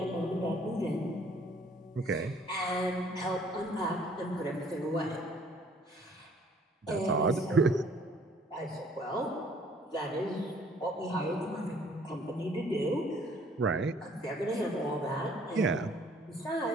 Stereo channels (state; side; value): normal; both; correlation 0.59